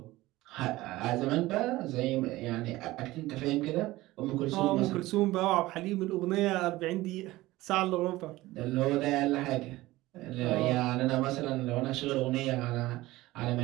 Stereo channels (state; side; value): quieter; left; 18.1 dB